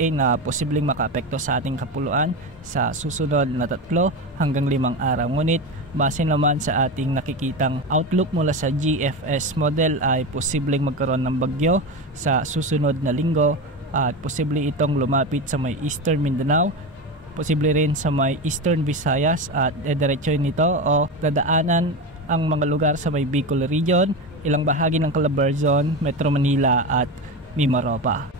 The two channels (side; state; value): both; normal; correlation 0.21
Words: na posibleng makaapekto sa ating kapuluan sa susunod na 3 hanggang 5 araw. Ngunit base naman sa ating nakikitang outlook mula sa GFS model ay posibleng magkaroon ng bagyo sa susunod na linggo at posible itong lumapit sa may Eastern Mindanao, posible rin sa may Eastern Visayas at diretsoy nito o dadaanan ang mga lugar sa may Bicol Region, ilang bahagi ng Calabarzon, Metro Manila at Mimaropa.